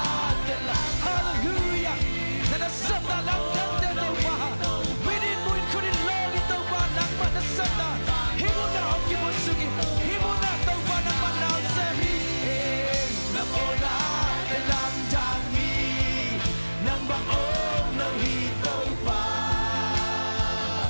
để làm hallelujah na na sắp ta làm đàn để tàu pa we did we couldn't love it tàu pa nang pa na sắp ta hi mo na ông ki mo sugi hi mo na tàu pa nang pa na sa hi hey na po na để làm đàn hi nang bang ôm lâu hi tàu pa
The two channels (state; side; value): inverted; both; correlation -1.00